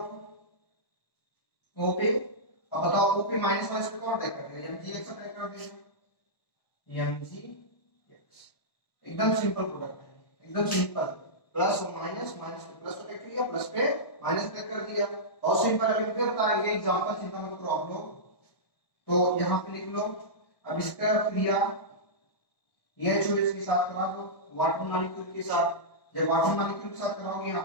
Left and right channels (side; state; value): right; late; 1.2 ms